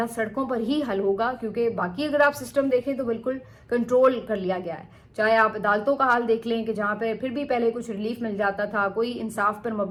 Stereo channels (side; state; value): both; identical; correlation 1.00